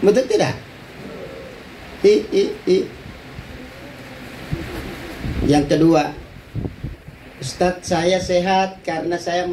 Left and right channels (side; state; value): both; identical; correlation 1.00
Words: Betul tidak? Yang kedua, Ustadz saya sehat karena saya